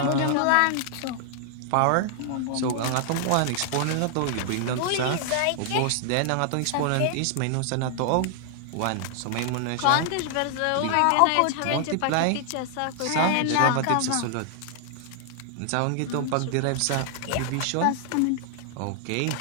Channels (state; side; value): different; both; correlation 0.00